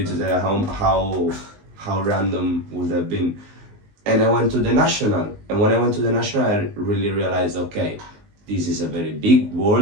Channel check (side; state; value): left; late; 19 ms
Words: to tell how random would have been. And I went to the national, and when I went to the national, I really realized, okay, this is a very big